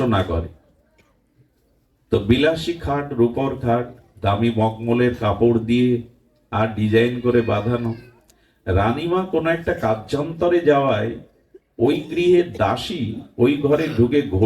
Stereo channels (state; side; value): identical; both; correlation 1.00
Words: না করে। তো বিলাসী খাট, রূপর খাট, দামি মখমলের কাপড় দিয়ে আর ডিজাইন করে বাঁধানো। রানীমা কোনো একটা কার্যান্তরে যাওয়ায় ওই গৃহের দাসী ওই ঘরে ঢুকে